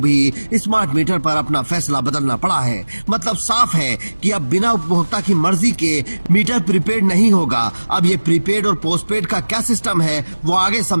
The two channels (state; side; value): inverted; both; correlation -1.00